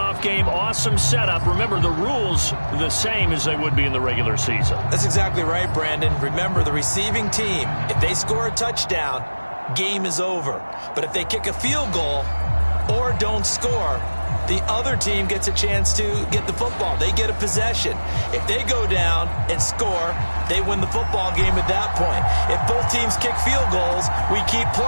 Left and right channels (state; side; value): inverted; both; correlation -1.00